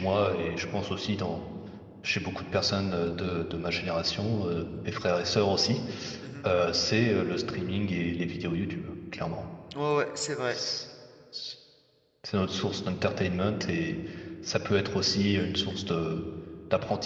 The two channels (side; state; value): both; identical; correlation 1.00